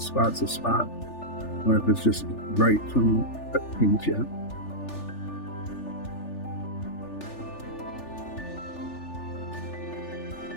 a spot or if it's just right from the paint yet.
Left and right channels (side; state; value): right; late; 3.4 ms